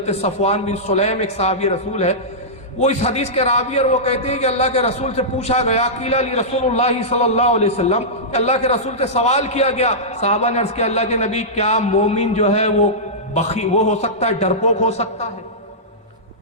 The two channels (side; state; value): both; normal; correlation -0.14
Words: صفوان بن سلیم ایک صحابی رسول ہے، وہ اس حدیث کے راوی، اور وہ کہتے ہیں کہ اللہ کے رسول سے پوچھا گیا، قیل لی رسول اللہ صلی اللہ علیہ وسلم، کہ اللہ کے رسول سے سوال کیا گیا، صحابہ نے عرض کیا اللہ کے نبی کیا مومن جو ہے وہ وہ ہو سکتا ہے، ڈرپوک ہو سکتا ہے؟